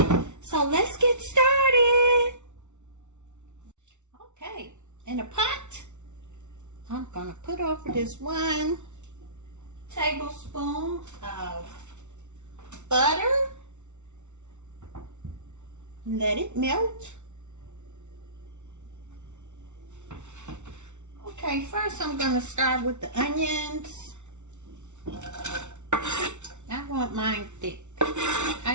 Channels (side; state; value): left; late; 0.83 ms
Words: So let's get started. Okay, in a pot, I'm gonna put over this 1 tablespoon of butter. Let it melt. Okay, first I'm going to start with the onions. I want mine thick.